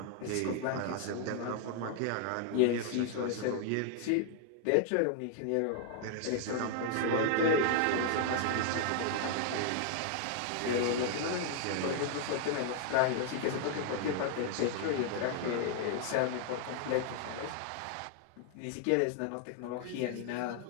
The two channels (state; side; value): different; both; correlation 0.00